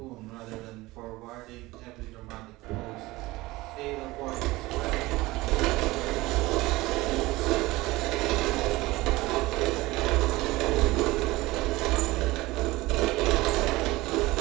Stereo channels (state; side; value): quieter; left; 19.9 dB